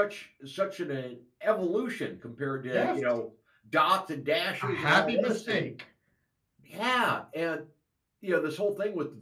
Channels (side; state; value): both; identical; correlation 1.00